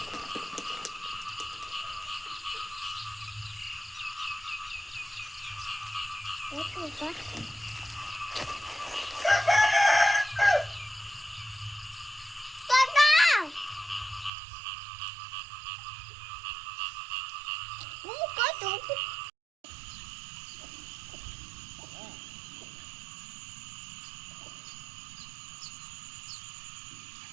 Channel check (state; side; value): drops out; left; at 14.3 s